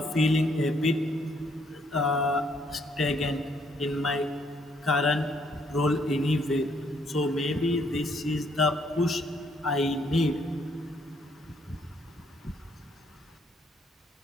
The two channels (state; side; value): normal; both; correlation 0.69